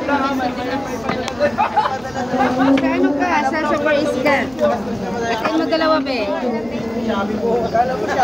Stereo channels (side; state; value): right; noise; hum, 22 dB below the sound